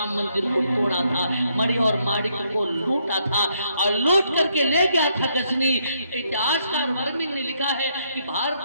मंदिर को तोड़ा था, मणि और माणिक को लूटा था और लूट करके ले गया था गजनी। इतिहासकार वर्णन ने लिखा है कि भारत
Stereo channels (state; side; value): inverted; both; correlation -0.73